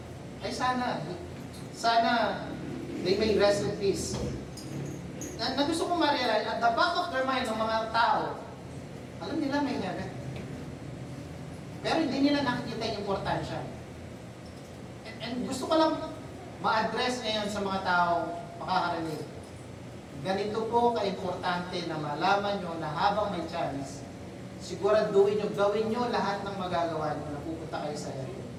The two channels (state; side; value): identical; both; correlation 1.00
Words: ay sana they may rest in peace. Na gusto kong ma-realize, at the back of their mind ng mga tao, alam nila may heaven. Pero hindi nila nakikita yung importansya. And gusto ko lang ma-address ngayon sa mga tao makakarinig. Ganito po ka-importante na malaman nyo na habang may chance, siguraduhin nyo, gawin nyo lahat ng magagawa nyo na pupunta kayo sa heaven.